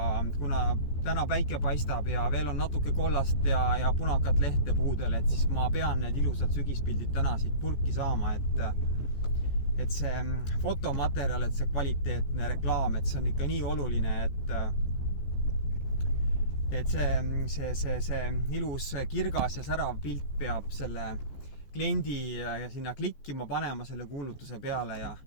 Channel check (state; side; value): late; right; 14 ms